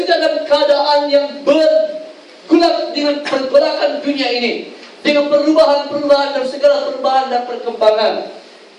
juga dalam keadaan yang bergulat dengan pergolakan dunia ini, dengan perubahan-perubahan dan segala perubahan dan perkembangan,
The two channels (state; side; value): identical; both; correlation 1.00